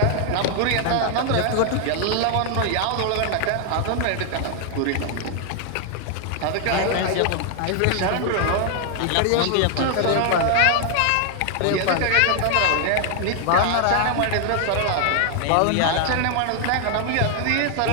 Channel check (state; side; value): different; both; correlation 0.00